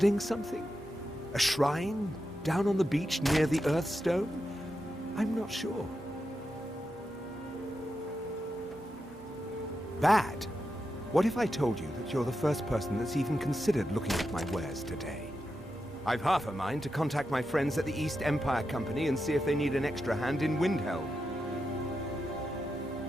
something? A shrine down on the beach near the Earthstone? I'm not sure. Bad? What if I told you that you're the first person that's even considered looking at my wares today? I've half a mind to contact my friends at the East Empire Company and see if they need an extra hand in Windhelm.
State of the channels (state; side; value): normal; both; correlation 0.88